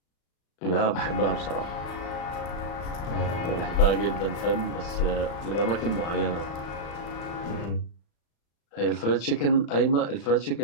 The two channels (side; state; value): right; late; 35 ms